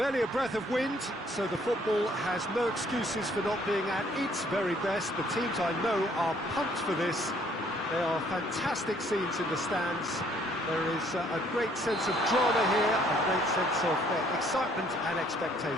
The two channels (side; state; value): both; normal; correlation 0.63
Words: a breath of wind, so the football has no excuses for not being at its very best. The teams I know are pumped for this. There are fantastic scenes in the stands. There is a great sense of drama here, a great sense of excitement and